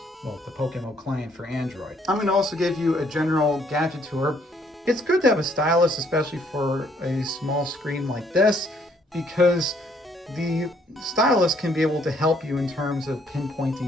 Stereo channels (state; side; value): normal; both; correlation 0.67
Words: Well, the PokeMMO client for Android. I'm going to also give you a general gadget tour. It's good to have a stylus, especially for a small screen like this, because the stylus can be able to help you in terms of